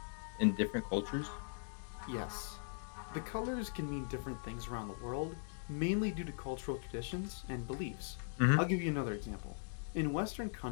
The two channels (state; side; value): silent; right; digital silence